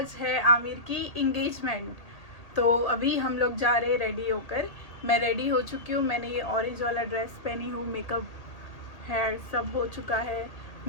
है आमिर की इंगेजमेंट। तो अभी हम लोग जा रहे हैं रेडी होकर। मैं रेडी हो चुकी हूँ। मैंने ये ऑरेंज वाला ड्रेस पहनी हूँ, मेकअप हेयर सब हो चुका है,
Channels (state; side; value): late; right; 1.8 ms